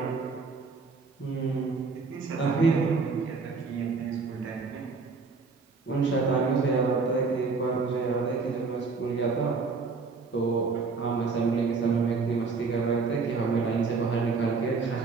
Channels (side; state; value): left; quieter; 4.5 dB